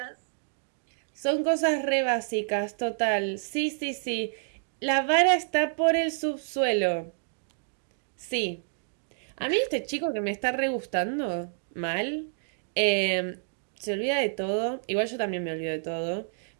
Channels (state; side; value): silent; left; digital silence